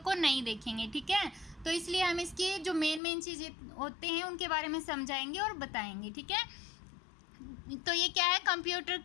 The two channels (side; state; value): right; drops out; at 3.0 s